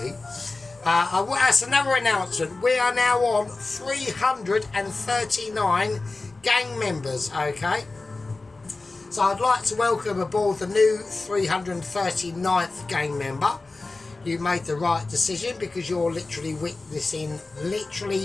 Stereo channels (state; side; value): quieter; right; 3.4 dB